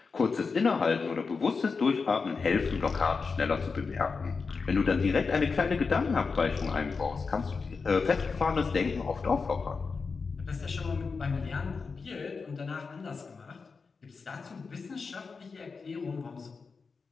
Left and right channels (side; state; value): right; quieter; 4.8 dB